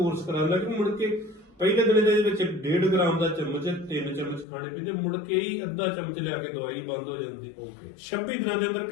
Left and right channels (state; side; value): drops out; right; at 4.5 s